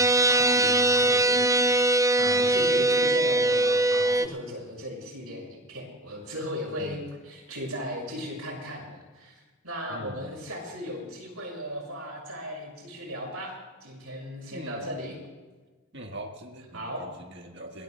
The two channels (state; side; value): normal; both; correlation 0.29